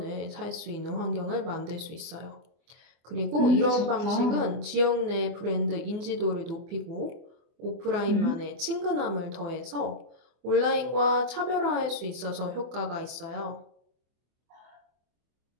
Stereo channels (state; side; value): late; left; 24 ms